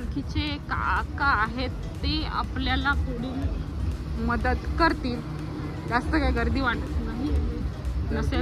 काका आहेत ते आपल्याला पुढील मदत करतील. जास्त काय गर्दी वाटत नाही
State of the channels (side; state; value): both; identical; correlation 1.00